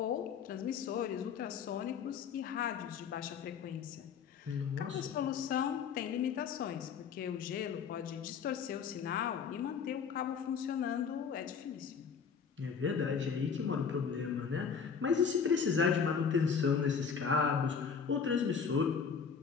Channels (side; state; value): right; quieter; 6.4 dB